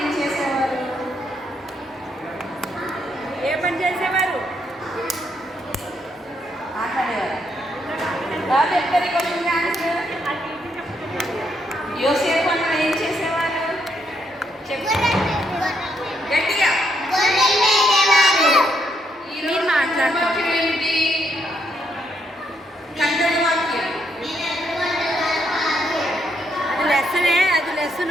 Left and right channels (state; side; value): normal; both; correlation 0.76